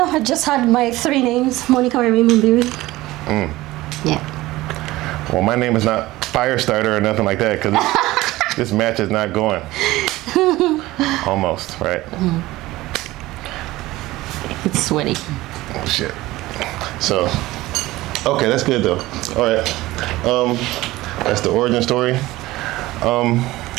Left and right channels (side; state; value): left; quieter; 18.1 dB